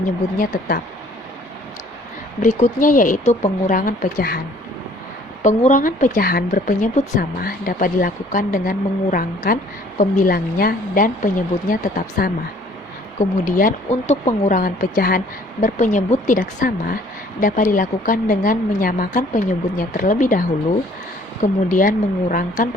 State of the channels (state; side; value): normal; both; correlation 0.56